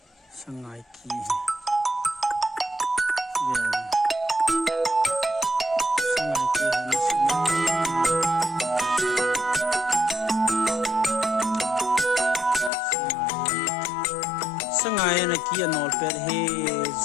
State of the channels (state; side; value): drops out; right; at 12.7 s